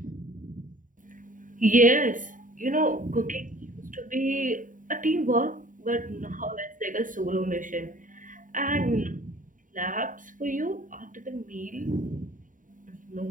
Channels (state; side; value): late; left; 0.38 ms